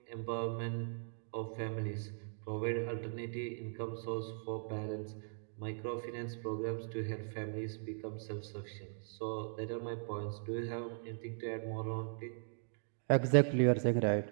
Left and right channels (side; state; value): left; silent; digital silence